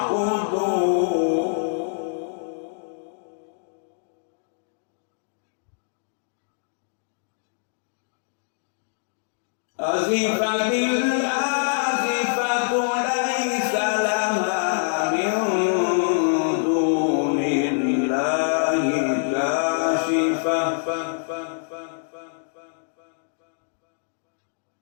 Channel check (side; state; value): right; silent; digital silence